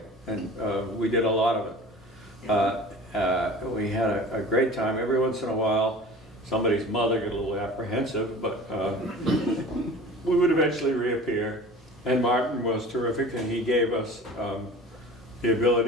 And we did a lot of it. We had a great time. Every once in a while, somebody's mother got a little apprehensive, but we would eventually reappear. And Martin was terrific, and he gave us the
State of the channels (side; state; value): both; normal; correlation 0.41